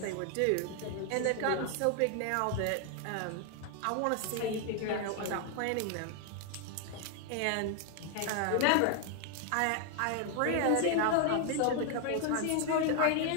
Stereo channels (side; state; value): both; different; correlation 0.00